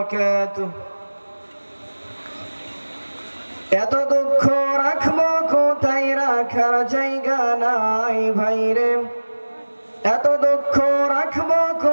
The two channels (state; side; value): inverted; both; correlation -1.00